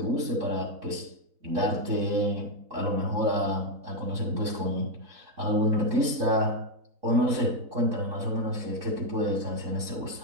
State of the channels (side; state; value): left; late; 3.9 ms